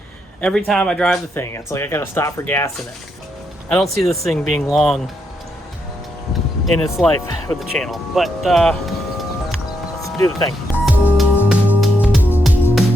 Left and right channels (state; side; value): normal; both; correlation 0.80